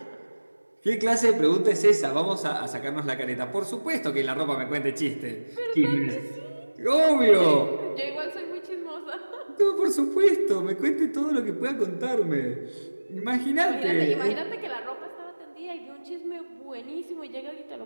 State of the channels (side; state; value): both; inverted; correlation -1.00